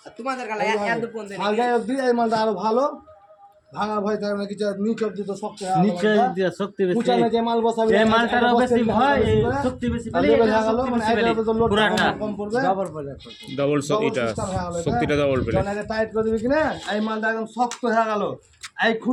তোমাদের গালা এত ফোন দেন হালকা অবধি এই মালটা আরো ভালো ভাঙা ভয় থাকে না কিছু নিচ অবধি তো শক্ত হয় নিচে দিয়ে শক্তি বেশি উঁচানে যে মাল বসাবি এই মালটারও বেশি ভয় এই শক্তি বেশি পেলে তাহলে এটা হয়ে গেল শক্তি মানে বেশি পেলে এটা তো লোড পুরাটা কম পড়বে ডবল পড়বে ডবল এটা সিস্টেম হয়ে গেল শক্তিটা ডবল পেলে। যখন এটা টাইট করে দিবি কিনা এই মালটা একদম শক্ত হয়ে গেল এই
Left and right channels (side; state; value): both; identical; correlation 1.00